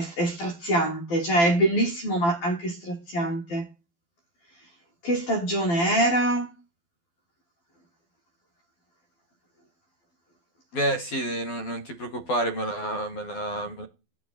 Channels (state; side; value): late; right; 12 ms